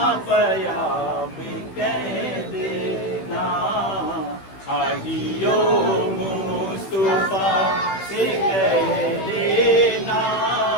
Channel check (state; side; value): late; right; 16 ms